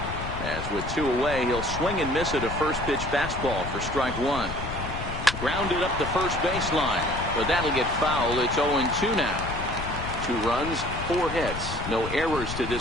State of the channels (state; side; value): noise; left; rumble, 7 dB below the sound